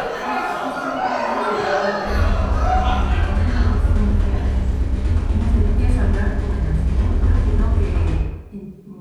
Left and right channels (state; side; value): identical; both; correlation 1.00